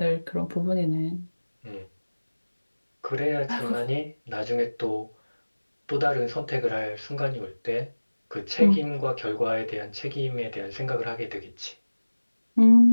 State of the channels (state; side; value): inverted; both; correlation -1.00